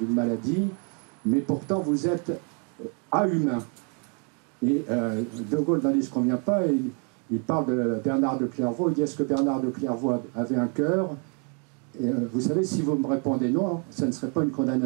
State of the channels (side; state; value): left; quieter; 36.5 dB